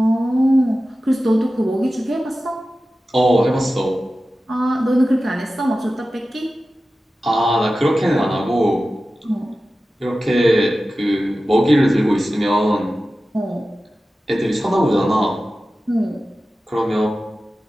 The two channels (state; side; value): normal; both; correlation 0.95